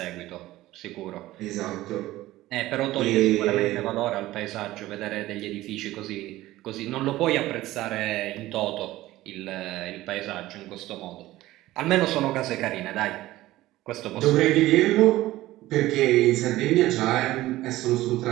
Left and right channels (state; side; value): quieter; left; 16.6 dB